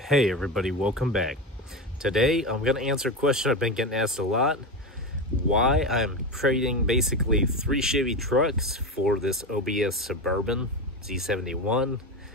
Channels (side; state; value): both; normal; correlation 0.19